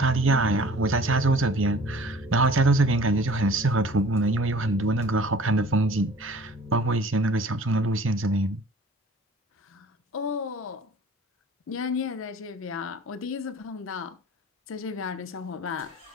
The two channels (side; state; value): both; normal; correlation 0.47